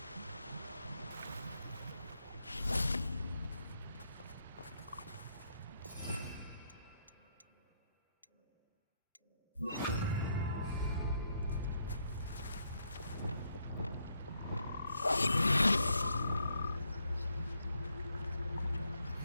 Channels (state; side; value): inverted; both; correlation -0.75